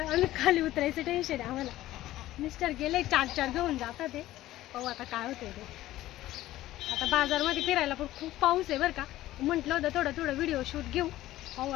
आम्ही खाली उतरायचं टेन्शन आहे आम्हाला. मिस्टर गेले 4 घेऊन जातात ते. पाहू आता काय होते ते. आता बाजारमध्ये फिरायला पण खूप पाऊस आहे बरं का. म्हटलं होतं थोडं व्हिडिओ शूट घेऊ. पाहू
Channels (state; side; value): quieter; right; 15.3 dB